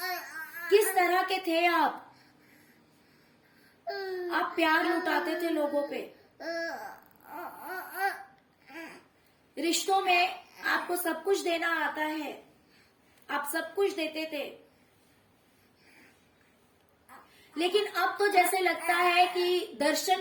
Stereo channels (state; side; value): identical; both; correlation 1.00